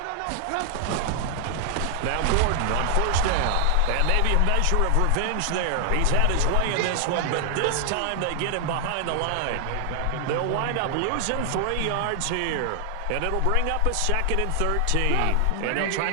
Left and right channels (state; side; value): different; both; correlation 0.00